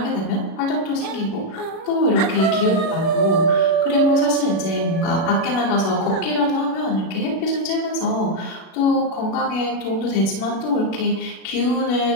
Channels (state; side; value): late; right; 36 ms